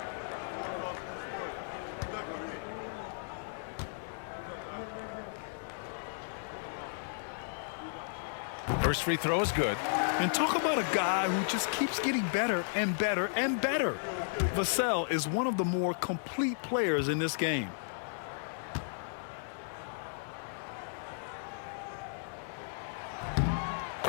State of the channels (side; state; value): right; silent; 55 dB below the other